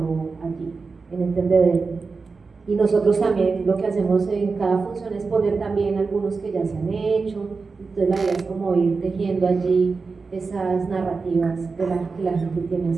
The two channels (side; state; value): left; quieter; 4.5 dB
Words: allí, en el tendedero. Y nosotros también lo que hacemos en cada función es poner también algunos que ya se han hecho, entonces la idea es como ir tejiendo allí esas narrativas que la gente tiene